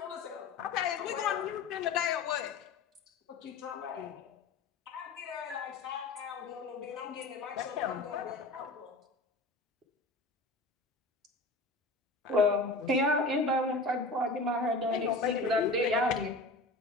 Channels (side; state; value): right; quieter; 3.2 dB